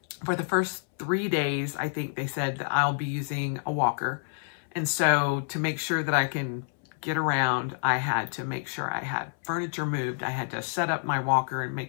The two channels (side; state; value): right; silent; 59 dB below the other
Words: for the first 3 days, I think they said that I'll be using a walker. And so to make sure that I can get around, I had to make sure I had furniture moved. I had to set up my walker and